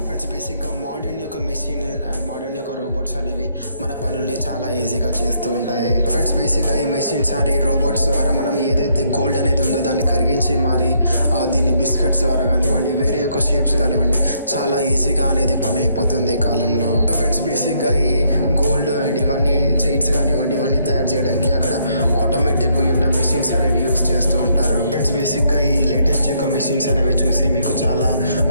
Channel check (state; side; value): inverted; both; correlation -0.71